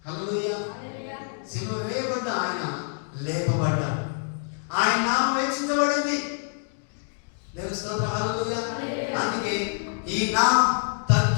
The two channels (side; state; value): right; silent; 61 dB below the other